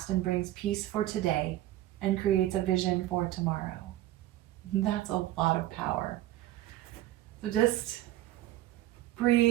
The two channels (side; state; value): left; quieter; 14.8 dB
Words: and brings peace for today and creates a vision for tomorrow. That's a lot of power. So just